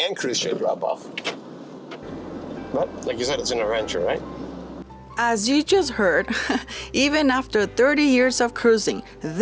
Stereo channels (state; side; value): identical; both; correlation 1.00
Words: cruise ship drop off? But like you said, it's an adventure, right? As you just heard, even after 30 years of cruising,